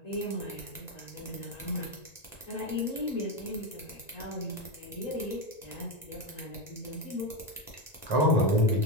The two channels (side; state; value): right; late; 1.9 ms